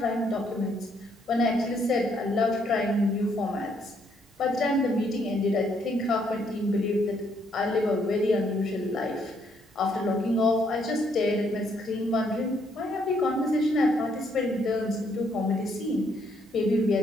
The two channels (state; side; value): normal; both; correlation 0.71